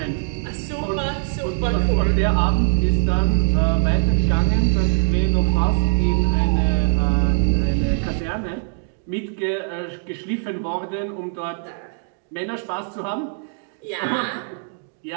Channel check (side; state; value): left; silent; 65 dB below the other